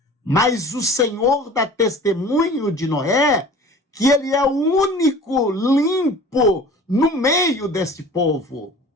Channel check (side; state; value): both; normal; correlation 0.43